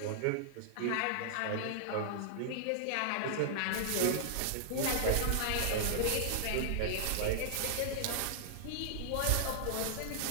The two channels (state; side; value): different; both; correlation -0.01